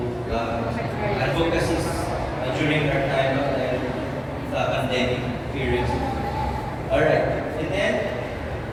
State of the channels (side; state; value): both; identical; correlation 1.00